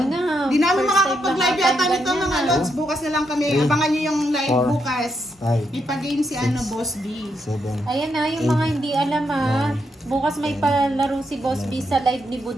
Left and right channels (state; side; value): normal; both; correlation 0.80